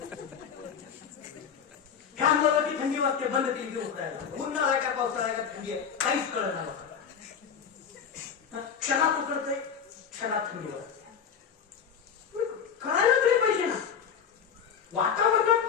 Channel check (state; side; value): quieter; right; 7.3 dB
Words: फॅन लावला की थंडी वाजते, बंद केली की उकडायला. उन्हाळा आहे का पावसाळा आहे का थंडी आहे काहीच कळत नाही. क्षणात उकडते, क्षणात थंडी वाजते. कळायला तरी पाहिजे ना.